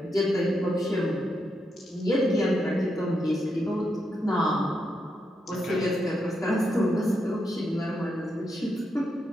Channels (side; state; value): both; normal; correlation 0.83